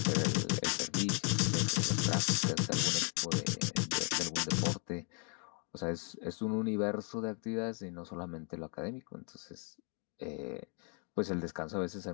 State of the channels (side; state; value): right; quieter; 39.3 dB